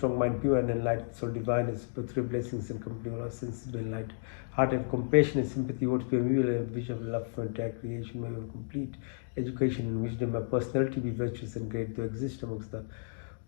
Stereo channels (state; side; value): silent; right; digital silence